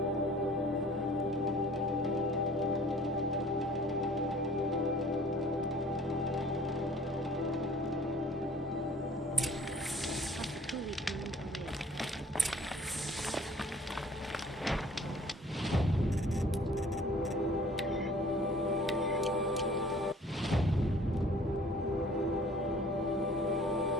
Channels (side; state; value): both; normal; correlation 0.52